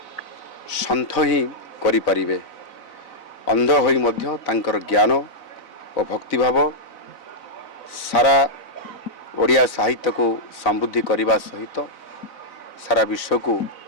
सन्थ ही करि परिबे। अंध होई मध्य तांकर ज्ञान और भक्तिभाव सारा ओडिया साहित्य को समृद्धि करने सहित सारा विश्व को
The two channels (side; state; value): right; late; 4.0 ms